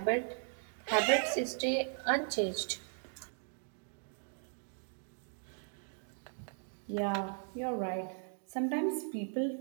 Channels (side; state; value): left; silent; 53 dB below the other